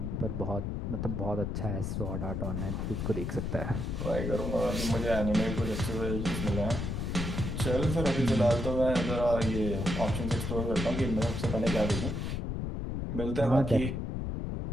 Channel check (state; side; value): noise; left; rumble, 2 dB below the sound